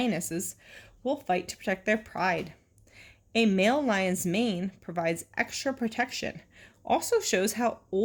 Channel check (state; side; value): identical; both; correlation 1.00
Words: will fight to protect their pride. A male lion's mane provides extra protection, also shows how